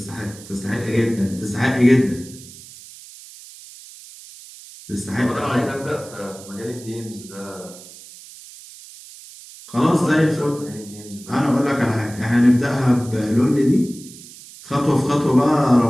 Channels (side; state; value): right; noise; hiss, 18 dB below the sound